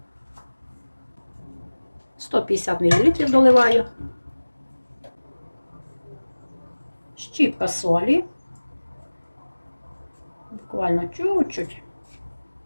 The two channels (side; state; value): both; inverted; correlation -1.00